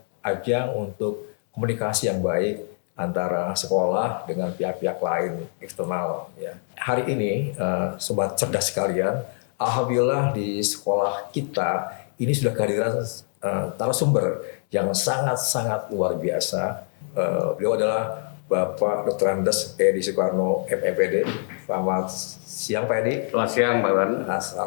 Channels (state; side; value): silent; right; 62 dB below the other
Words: ajang untuk komunikasi yang baik antara sekolah dengan pihak-pihak lain eksternal. Ya. Hari ini, sobat cerdas sekalian, alhamdulillah di sekolah kita ini sudah kehadiran narasumber yang sangat-sangat luar biasa. Beliau adalah Bapak Dr. Andes Edi Soekarno MPD. Selamat siang Pak Edi. Selamat siang Pak Wan.